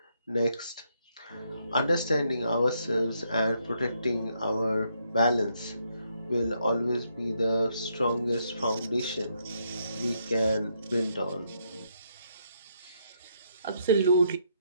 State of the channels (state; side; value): inverted; both; correlation -0.75